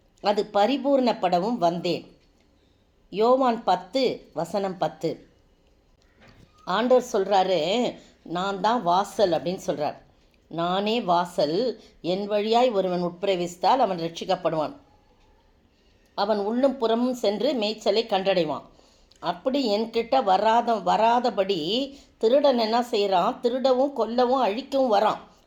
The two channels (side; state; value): both; identical; correlation 1.00